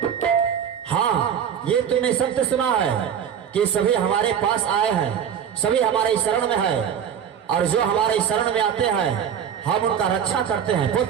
हाँ, ये तुमने सत्य सुना है कि सभी हमारे पास आए हैं, सभी हमारे शरण में है, और जो हमारे शरण में आते हैं हम उनका रक्षा करते हैं।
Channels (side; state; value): left; quieter; 8.4 dB